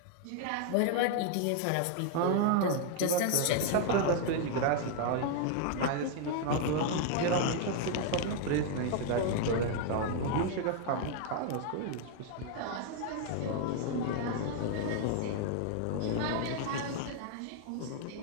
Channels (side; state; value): both; different; correlation 0.00